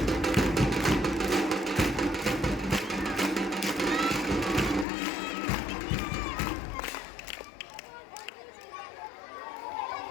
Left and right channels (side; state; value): right; drops out; at 4.9 s